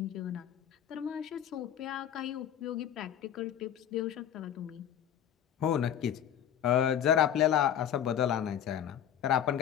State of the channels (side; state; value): right; quieter; 9.8 dB